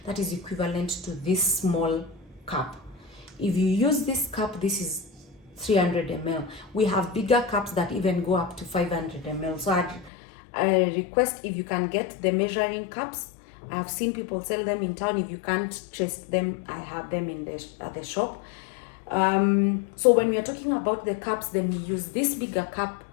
that is equivalent to this small cup. If you use this cup, this is 300 ml. We have bigger cups that even go up to 500 ml. So I request if you can get the measuring cups. I've seen people sell them in town. If you can't trace them, I have them in the shop. So when we are talking about the cups, then we use this bigger cup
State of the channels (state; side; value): drops out; right; at 10.1 s